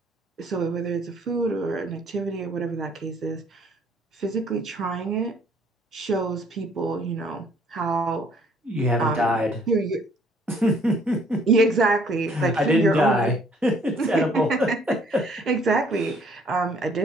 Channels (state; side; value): normal; both; correlation 0.60